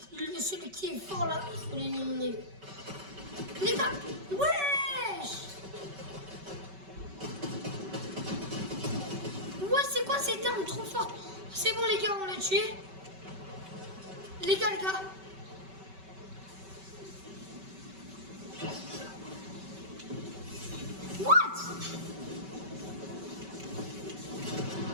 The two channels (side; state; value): left; late; 5.2 ms